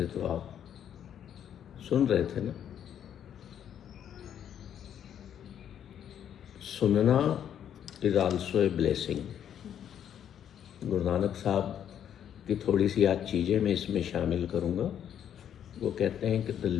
तो आप सुन रहे थे ना। सुनना is also a blessing. Guru Nanak साहब की थोड़ी सी आज चीज़ें मैं इसमें शामिल करूँगा। वो कहते हैं कि the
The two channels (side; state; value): right; quieter; 9.5 dB